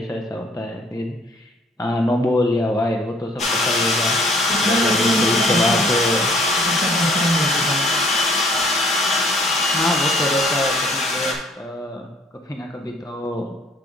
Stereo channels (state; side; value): normal; both; correlation 0.59